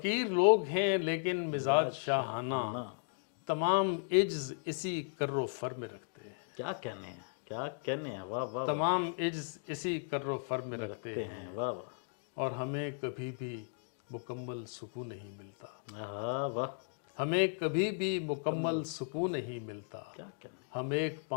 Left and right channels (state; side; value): silent; right; digital silence